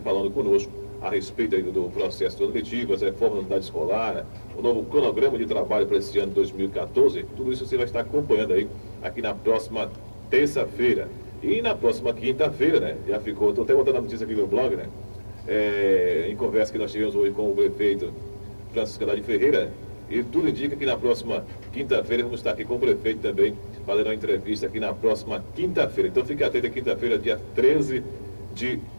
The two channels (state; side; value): inverted; both; correlation -1.00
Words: falando conosco a respeito aí do processo seletivo, as reformas da unidade escolar, o novo cronograma de trabalho para esse ano de 2014. Tudo isso você vai estar acompanhando aí aqui na próxima terça-feira. E na próxima quinta-feira, já ficou, estou até botando a notícia aqui no blog, em conversa que nós tivemos hoje com o prefeito Francisco Andrade Ferreira, e tudo indica que na próxima quinta-feira vamos estar aqui com o prefeito também, fazendo uma entrevista aqui na próxima quinta-feira. Então fique atento, quinta-feira, dia 13 de